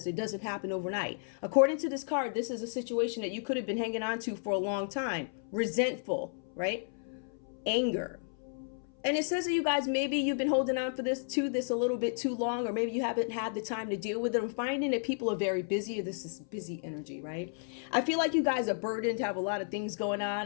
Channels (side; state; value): right; silent; 56 dB below the other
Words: It doesn't happen overnight. According to this card, this is a situation that you could have been hanging on to for a long time. Resentful, right? Anger. And it says that you guys, maybe you've been holding on to this a little bit too long, or maybe you haven't had the time to deal with it. I'm finding that people are very busy. This is busy energy, right? I feel like you guys are burdened, have a lot of things going